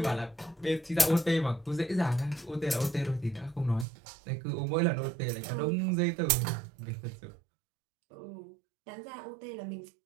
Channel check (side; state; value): left; drops out; at 3.9 s